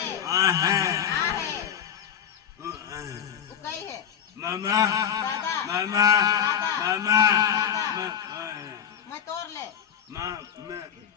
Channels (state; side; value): quieter; right; 8.6 dB